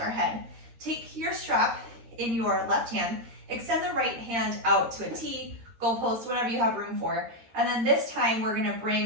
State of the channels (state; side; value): late; left; 13 ms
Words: head. Take your strap in your left hand, extend the right hand out to a T, goalpost, whatever you have room for. And then this time we're gonna